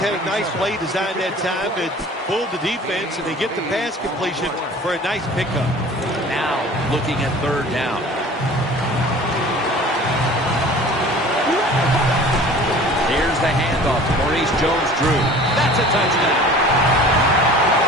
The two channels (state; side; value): normal; both; correlation 0.44